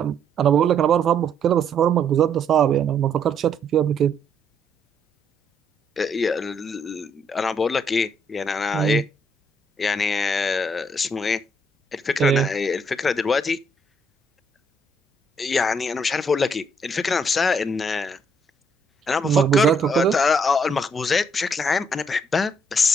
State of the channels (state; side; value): normal; both; correlation 0.70